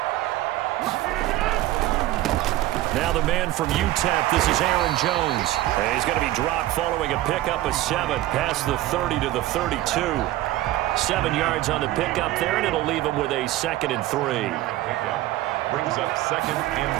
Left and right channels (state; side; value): quieter; left; 15.8 dB